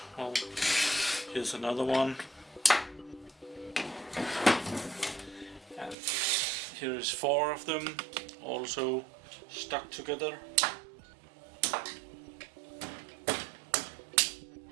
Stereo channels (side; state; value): left; drops out; at 6.0 s